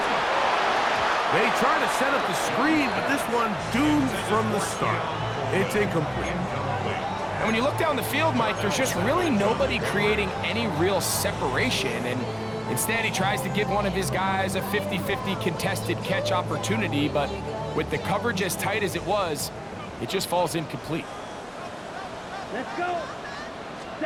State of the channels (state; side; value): identical; both; correlation 1.00